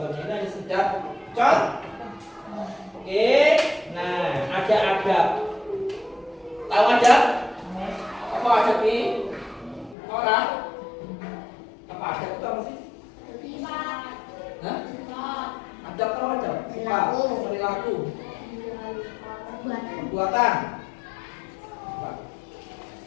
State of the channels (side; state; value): right; drops out; at 10.0 s